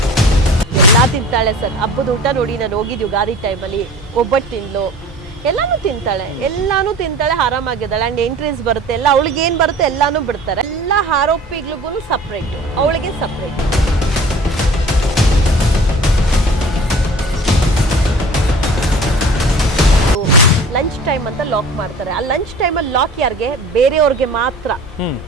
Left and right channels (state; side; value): normal; both; correlation 0.43